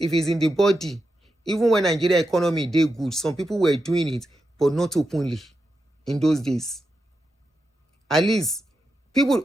it's in the body, even when Nigeria economy did good, some people were doing it, but not openly in those days. At least,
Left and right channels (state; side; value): normal; both; correlation 0.87